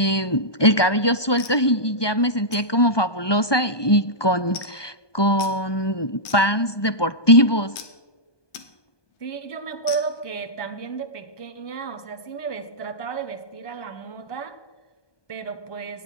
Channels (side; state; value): right; late; 1.2 ms